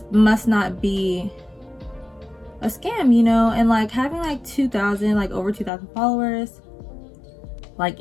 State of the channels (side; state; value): right; drops out; at 5.7 s